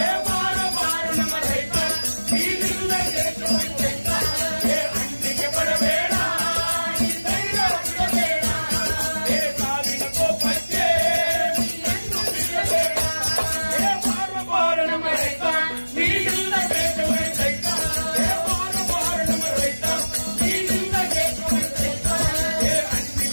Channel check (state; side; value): inverted; both; correlation -1.00